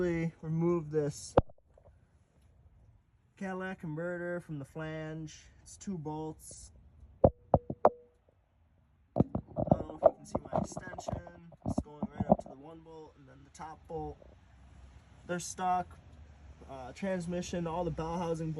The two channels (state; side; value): identical; both; correlation 1.00